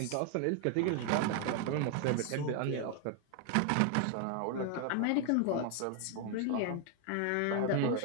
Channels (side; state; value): both; different; correlation 0.01